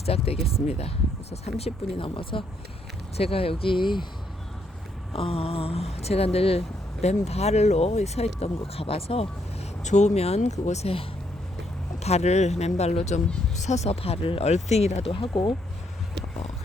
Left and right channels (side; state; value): both; normal; correlation 0.74